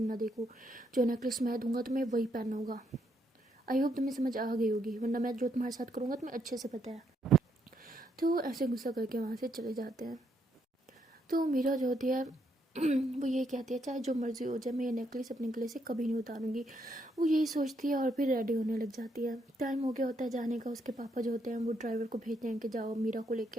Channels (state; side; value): normal; both; correlation 0.75